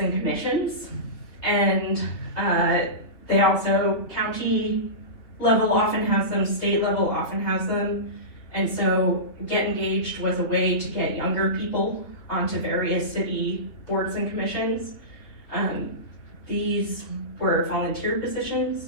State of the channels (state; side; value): late; right; 3.8 ms